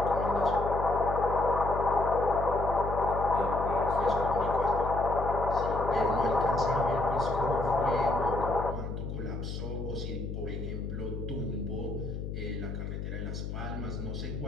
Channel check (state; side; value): noise; left; hum, 6 dB below the sound